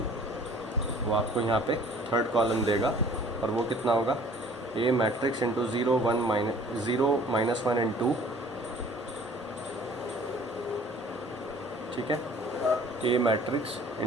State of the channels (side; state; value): both; normal; correlation 0.52